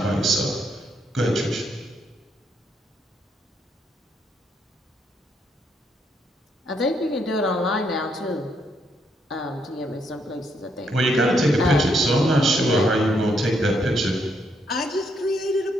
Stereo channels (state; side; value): normal; both; correlation 0.75